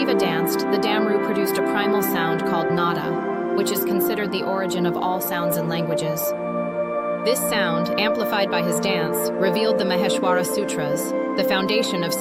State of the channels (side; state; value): both; identical; correlation 1.00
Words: danced, the Damaru produced a primal sound called nada, which is considered the origin of all sounds and languages. This sound, amplified by his dance, revealed the Maheshwara Sutras, the foundation of